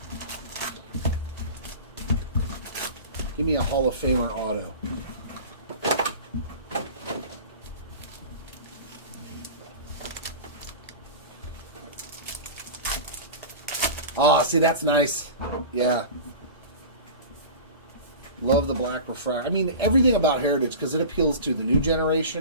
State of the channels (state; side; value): inverted; both; correlation -0.34